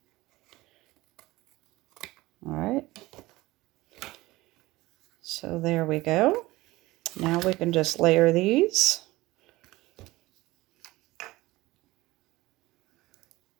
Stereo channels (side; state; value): left; quieter; 19.2 dB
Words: All right. So there we go. Now we can just layer these.